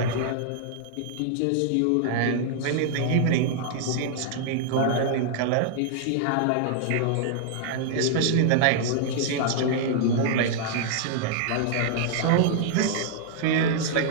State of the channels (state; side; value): different; both; correlation -0.01